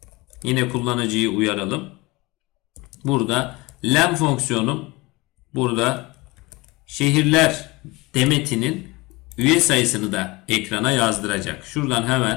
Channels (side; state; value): right; quieter; 23.0 dB